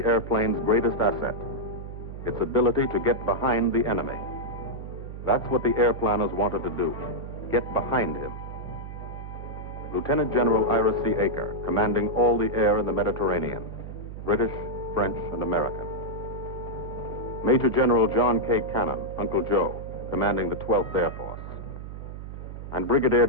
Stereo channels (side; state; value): right; noise; hum, 10 dB below the sound